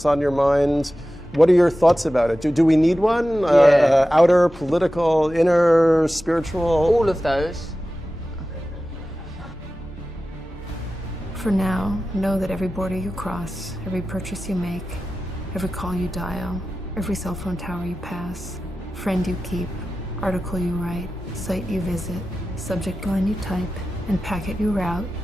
on your mind. What are your thoughts about it? Do we need one? Yeah. Outer, political, inner, spiritual? All of those. For now, know that every border you cross, every purchase you make, every call you dial, every cell phone tower you pass, friend you keep, article you write, site you visit, subject line you type, and packet you route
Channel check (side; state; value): both; normal; correlation 0.94